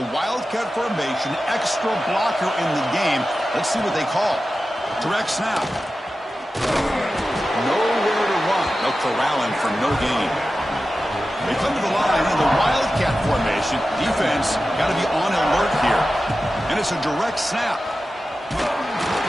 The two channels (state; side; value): normal; both; correlation 0.93